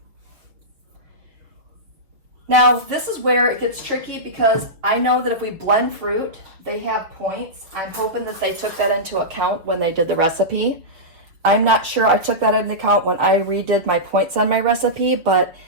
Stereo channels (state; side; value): late; left; 6.1 ms